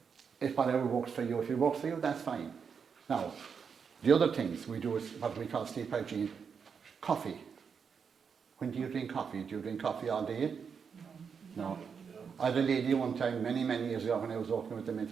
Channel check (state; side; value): quieter; left; 6.4 dB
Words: if whatever works for you, if it works for you, that's fine. Now, the other things we do is what we call sleep hygiene. Coffee. When do you drink coffee? Do you drink coffee all day? No. I had a lady one time, many years ago, when I was working with the